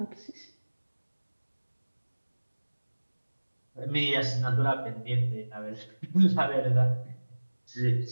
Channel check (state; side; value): inverted; both; correlation -1.00